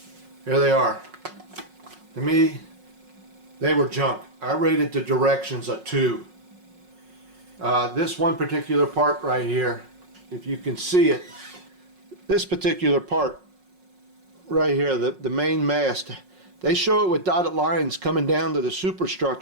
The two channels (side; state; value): left; late; 5.5 ms